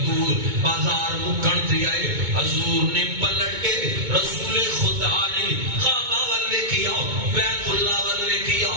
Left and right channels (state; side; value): late; left; 2.2 ms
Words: بازار مکن تے آئے حضور نے پلٹ کے رسول خدا نے کعبہ ول ویکھیا بیت اللہ ول ویکھیا